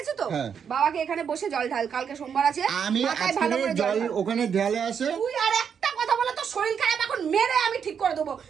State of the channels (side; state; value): left; quieter; 7.3 dB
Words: তো, বাবাকে এখানে বসে জল ঢাল, কালকে সোমবার আছে। আমি আজকে জল ওখানে ঢেলে আসে। তুই আর একটা কথা বলে তোর শরীর খারাপ এখন মেরে আমি ঠিক করে দেবো।